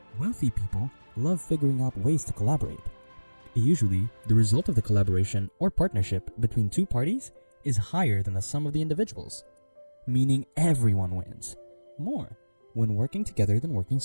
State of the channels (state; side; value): inverted; both; correlation -1.00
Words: Wealthy people love figuring out ways to collaborate. Usually, the result of the collaboration or partnership between two parties is higher than the sum of the individuals, meaning everyone wins more when working together than working